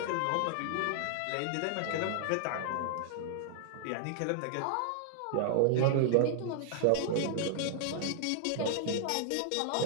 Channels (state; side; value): different; both; correlation -0.01